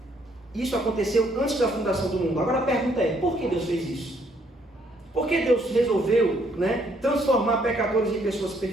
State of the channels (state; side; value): normal; both; correlation 0.68